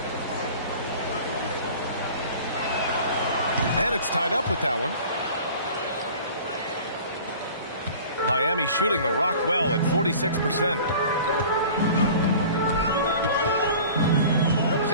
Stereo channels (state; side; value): inverted; both; correlation -0.43